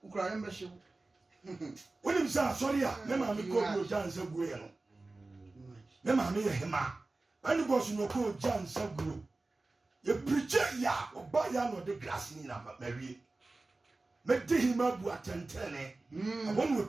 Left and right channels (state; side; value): quieter; left; 3.2 dB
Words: Ukraine membership. William said, sorry, Memma, me call you John Sagueno. Memma, me a hema. When you was no call John Sagueno. You preacher ya or buy ya no the glass in a Mary. Make him up what and tell I won't will